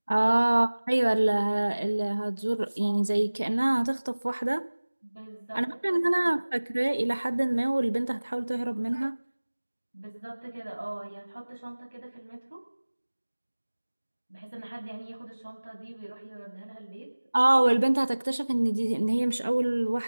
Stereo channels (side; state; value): both; inverted; correlation -1.00